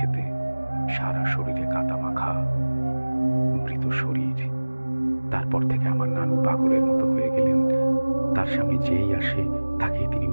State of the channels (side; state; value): both; inverted; correlation -1.00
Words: সারা শরীরে কাদা মাখা মৃত শরীর। তারপর থেকে আমার নানু পাগলের মতো হয়ে গেলেন। তার সামনে যেই আসে তাকেই তিনি